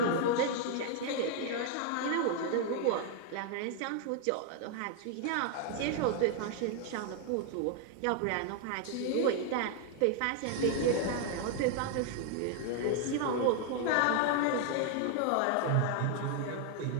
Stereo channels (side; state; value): both; different; correlation 0.00